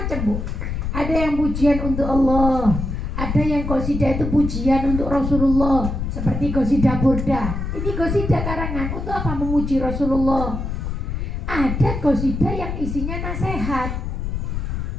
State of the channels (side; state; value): left; noise; rumble, 3 dB below the sound